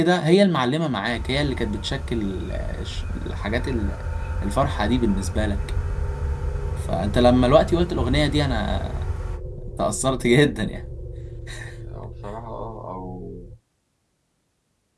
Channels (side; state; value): both; identical; correlation 1.00